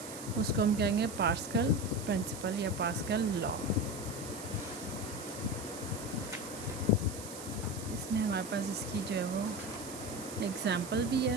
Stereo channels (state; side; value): noise; right; hiss, 11 dB below the sound